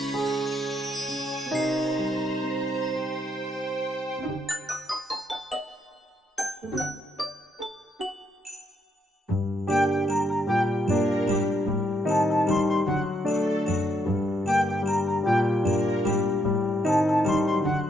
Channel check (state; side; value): normal; both; correlation 0.76